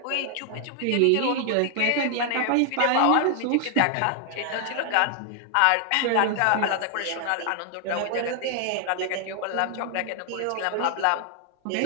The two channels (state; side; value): different; both; correlation 0.00